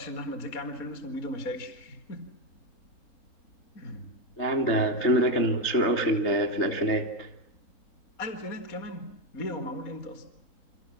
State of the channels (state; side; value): late; right; 3.3 ms